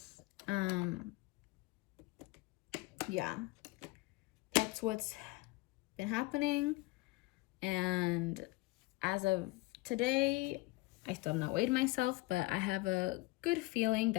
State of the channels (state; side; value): quieter; right; 21.8 dB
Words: Yeah. That's what's been happening. And as of today, I still have not weighed myself, but I have a good feeling